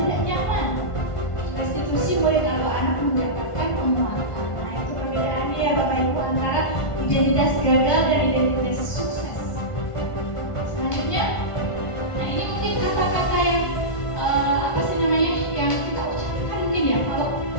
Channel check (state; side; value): late; right; 1.5 ms